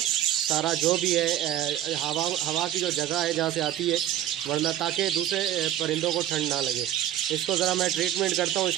सारा जो भी है, हवा की जो जगह है जहाँ से आती है, वरना ताकि दूसरे परिंदों को ठंड ना लगे। इसको ज़रा मैं ट्रीटमेंट करता हूँ,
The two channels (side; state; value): left; quieter; 12.1 dB